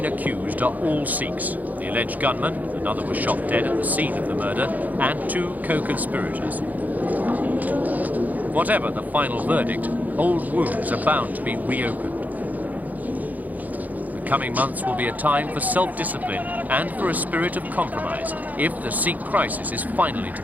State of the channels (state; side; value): late; left; 0.080 ms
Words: accused are all Sikhs. The alleged gunman, another was shot dead at the scene of the murder, and two co-conspirators. Whatever the final verdict, old wounds are bound to be reopened. The coming months will be a time for self-discipline and for a spirit of compromise if the Sikh crisis is finally to